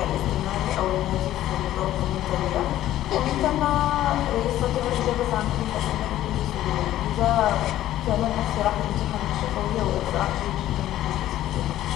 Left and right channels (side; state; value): right; quieter; 13.5 dB